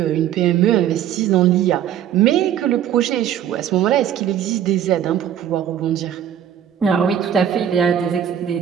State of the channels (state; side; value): quieter; left; 10.0 dB